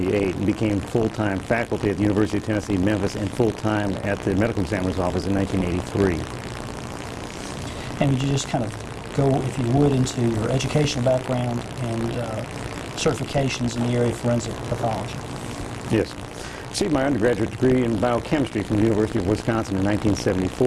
and became full-time faculty at the University of Tennessee, Memphis, and full-time at the medical examiner's office in 1983. And would you just kind of go, if you would, into your educational background and certifications in the area of forensic pathology? Yes. Received my undergraduate degree in biochemistry from the University of Wisconsin in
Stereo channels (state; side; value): identical; both; correlation 1.00